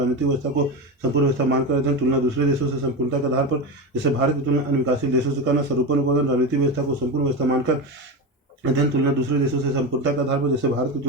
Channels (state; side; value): normal; both; correlation 0.19